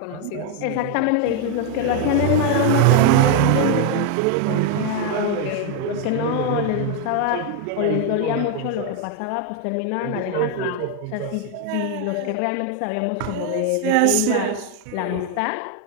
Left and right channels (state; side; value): different; both; correlation 0.01